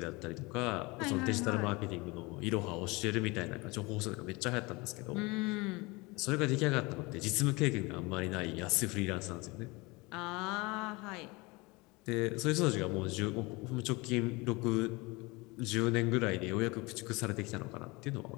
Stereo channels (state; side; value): quieter; right; 24.9 dB